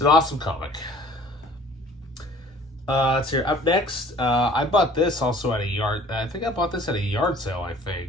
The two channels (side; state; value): both; normal; correlation 0.51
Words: an awesome comic. Let's hear. Up next, I bought this also at a yard. I think I bought this at a yard sale,